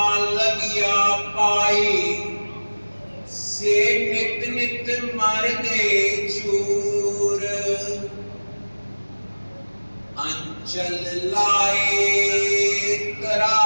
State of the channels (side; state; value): both; inverted; correlation -1.00